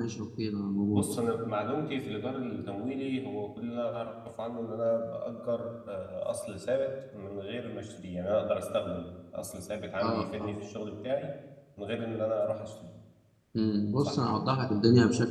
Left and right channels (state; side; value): identical; both; correlation 1.00